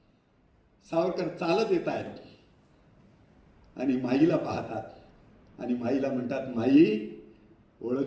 सावरकर चालत येत आहेत आणि माईला पाहतात आणि माईला म्हणतात, माई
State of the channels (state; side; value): identical; both; correlation 1.00